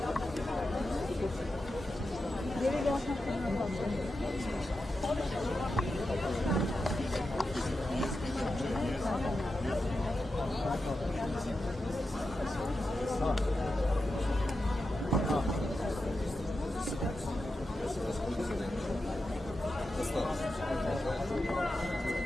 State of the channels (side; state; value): both; normal; correlation 0.89